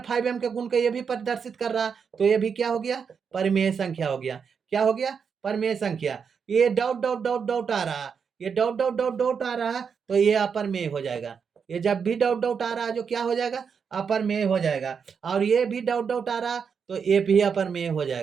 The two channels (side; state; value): left; quieter; 6.4 dB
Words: 5m के गुण के ये भी प्रदर्शित कर रहा, तो ये भी क्या हो गया, परिमेय संख्या हो गया। क्या हो गया, परिमेय संख्या। ये डॉट डॉट डॉट डॉट आ रहा, ये डॉट डॉट डॉट डॉट आ रहा, तो ये अपरमेय हो जाएगा। ये जब भी डॉट डॉट आ रहा है जो क्या हो जाएगा, अपरमेय हो जाएगा। और ये भी डॉट डॉट आ रहा तो ये भी अपरमेय हो